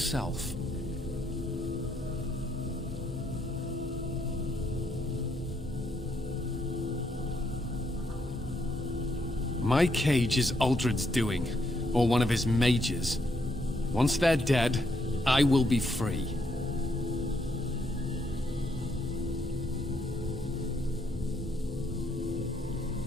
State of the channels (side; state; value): both; normal; correlation 0.75